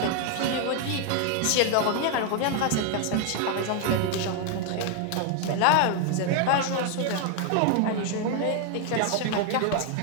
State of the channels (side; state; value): both; different; correlation 0.00